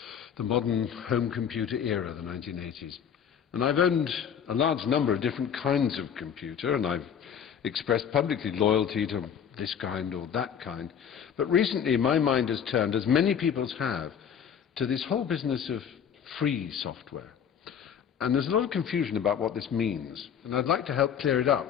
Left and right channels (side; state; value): right; quieter; 8.1 dB